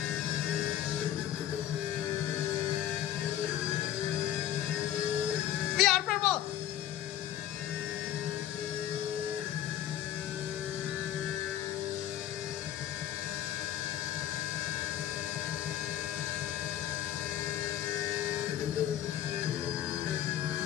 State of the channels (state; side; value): quieter; right; 11.7 dB